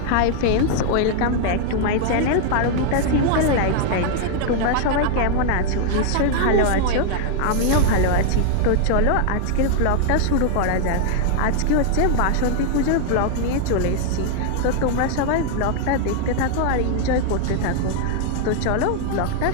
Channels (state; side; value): different; both; correlation 0.00